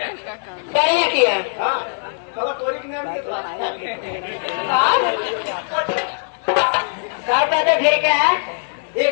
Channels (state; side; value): silent; right; digital silence